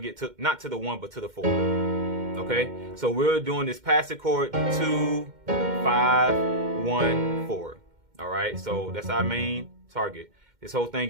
get to not to the 1 but to the 4. Okay, so we're doing this passive chord 2, 5, 1, 4. All right, so that's our main target. This whole thing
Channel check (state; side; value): late; left; 2.1 ms